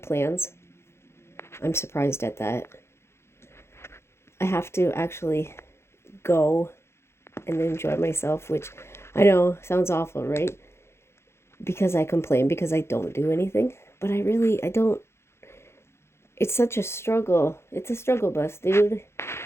plans. I'm surprised at that. I have to actually go and enjoy myself, which I know sounds awful, right? Because I complain because I don't do anything, but I don't. It's such a struggle. It's a struggle bus, dude.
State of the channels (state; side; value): late; right; 0.12 ms